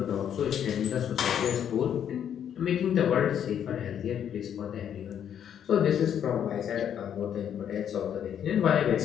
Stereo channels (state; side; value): quieter; right; 9.2 dB